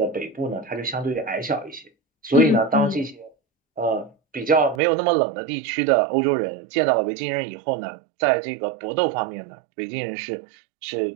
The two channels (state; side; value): drops out; left; at 4.8 s